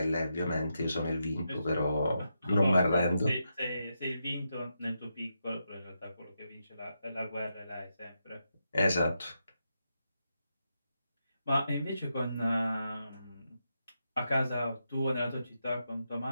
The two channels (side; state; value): both; inverted; correlation -0.85